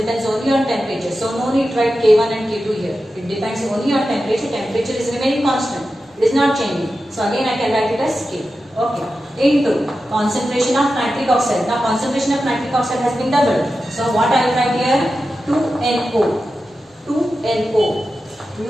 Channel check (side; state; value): both; normal; correlation 0.92